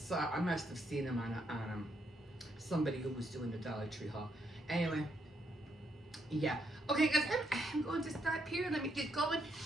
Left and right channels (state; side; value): normal; both; correlation 0.77